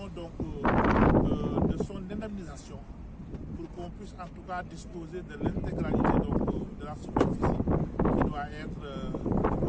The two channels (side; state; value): both; identical; correlation 1.00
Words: de son indemnisation pour qu'on puisse en tout cas disposer de l'intégralité de la superficie qui doit être